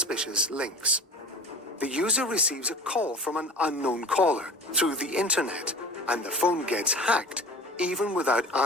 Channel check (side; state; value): both; normal; correlation 0.39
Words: links. The user receives a call from an unknown caller through the internet, and the phone gets hacked even without